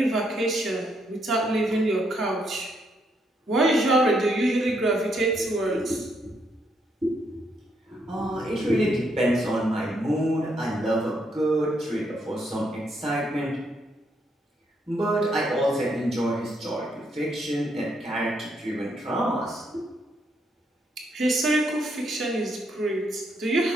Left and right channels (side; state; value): both; normal; correlation 0.75